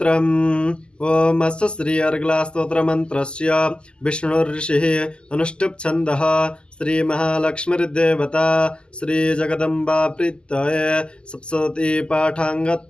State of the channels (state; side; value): late; right; 0.049 ms